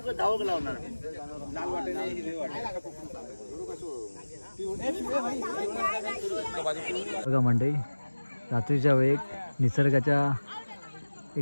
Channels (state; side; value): inverted; both; correlation -1.00